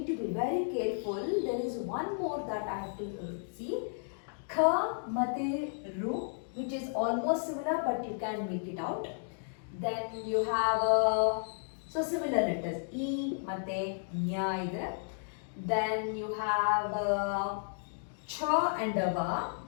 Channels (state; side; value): silent; right; digital silence